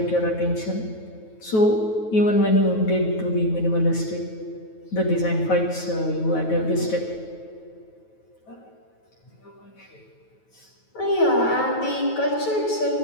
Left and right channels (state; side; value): late; right; 9.3 ms